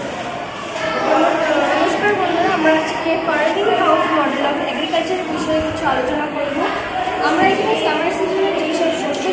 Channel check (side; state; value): both; identical; correlation 1.00